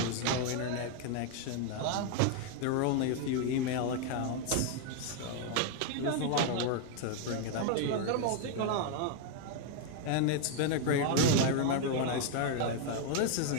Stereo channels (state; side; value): different; both; correlation 0.00